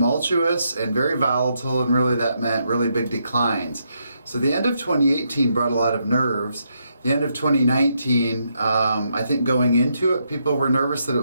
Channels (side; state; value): both; inverted; correlation -0.79